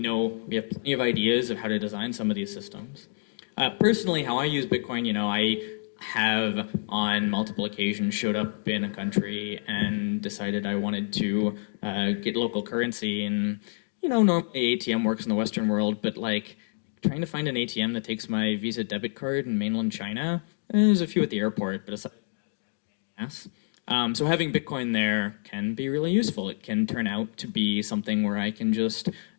we have plenty of ideas of how to design some of these systems. Personally, how I use Bitcoin, I have on multiple occasions showed up in a country and decided I wanted to get local currency. And, normally ATM works in the Western world, but trying to find an ATM that takes my Visa debit card in mainland China, there's a few at the airport, but aside from that, yes. So having Bitcoin there can be really useful. It can turn out to be something where I can just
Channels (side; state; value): right; silent; digital silence